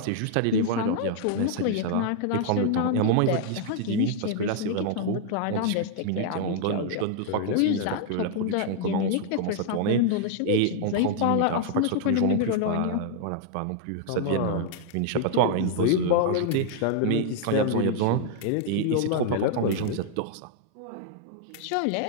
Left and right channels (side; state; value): both; different; correlation 0.00